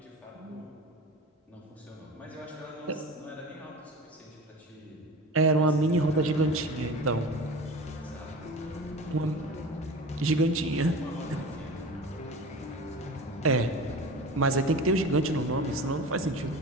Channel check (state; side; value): normal; both; correlation 0.34